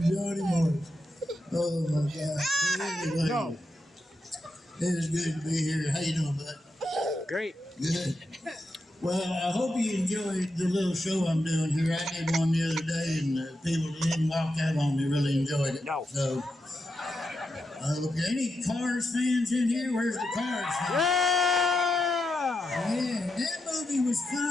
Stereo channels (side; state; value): both; normal; correlation 0.86